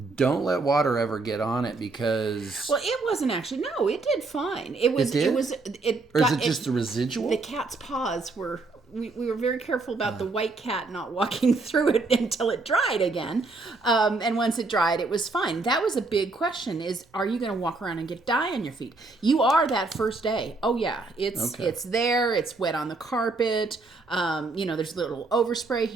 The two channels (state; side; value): quieter; left; 3.5 dB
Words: let water ever get on it, because... Well, it wasn't actually. No, it did fine. Or is it just the residual? The cat's paws were... We were very careful about the white cat not walking through it until it dried again. And once it dried, it was fine. That was a big question, is, are you going to walk around and get dye on your feet? You are that first day. Oh, yeah. It's there. It's wet on the carpet. There's a little overspray